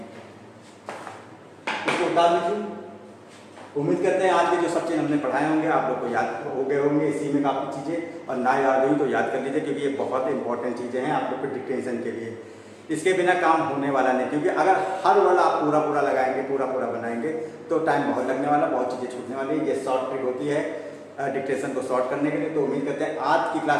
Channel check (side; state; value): both; identical; correlation 1.00